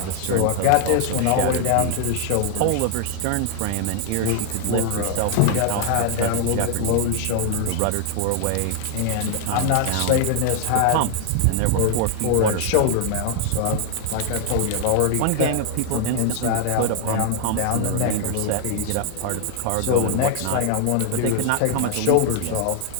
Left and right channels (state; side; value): different; both; correlation 0.00